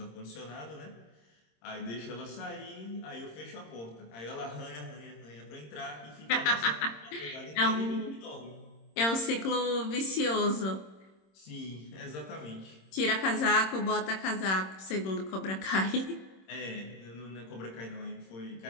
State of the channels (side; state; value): right; late; 26 ms